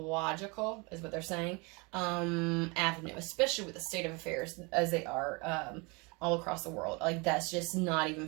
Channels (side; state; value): left; quieter; 28.9 dB